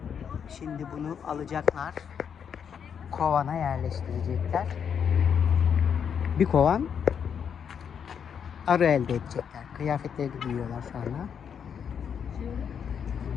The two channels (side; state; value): right; quieter; 7.5 dB